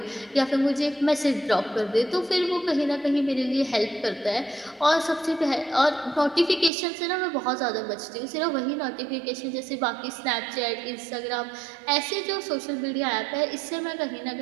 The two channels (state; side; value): drops out; left; at 6.7 s